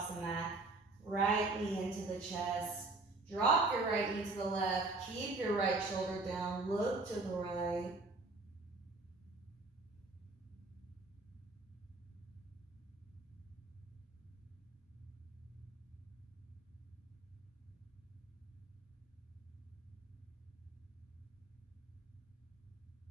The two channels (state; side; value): quieter; left; 3.3 dB